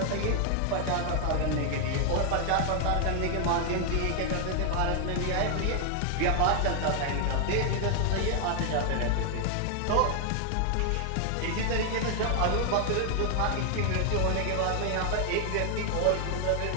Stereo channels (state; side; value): different; both; correlation 0.00